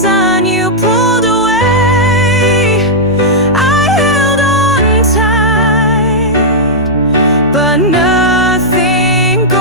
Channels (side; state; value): both; normal; correlation -0.07